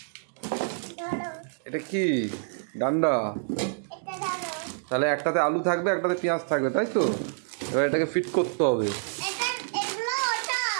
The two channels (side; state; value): left; silent; digital silence